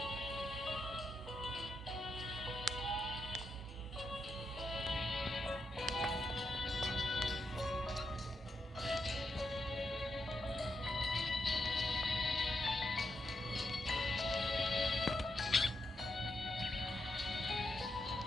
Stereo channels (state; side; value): normal; both; correlation 0.84